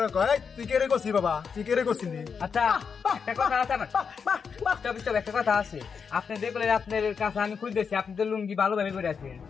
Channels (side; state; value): right; quieter; 6.1 dB